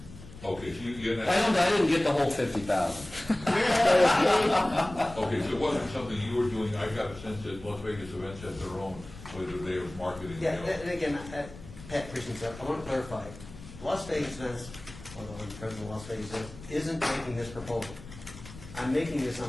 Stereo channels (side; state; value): left; noise; rumble, 16 dB below the sound